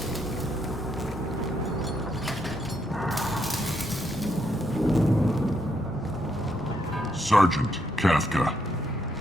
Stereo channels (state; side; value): normal; both; correlation 0.76